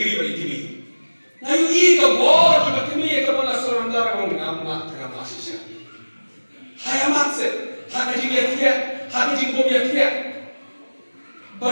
bari tibi nayu I ka bor ki batimi ka bona sorandara ngam amma tanga masisha hayamat se hakaji yatia hakaji bom yatia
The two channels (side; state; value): both; inverted; correlation -1.00